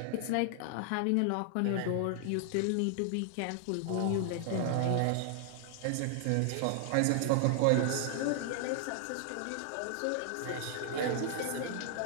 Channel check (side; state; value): both; different; correlation 0.00